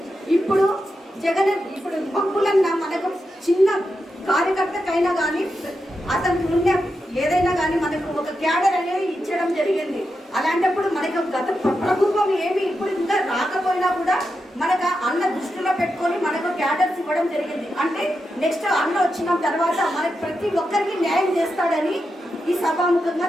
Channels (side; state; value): both; normal; correlation 0.87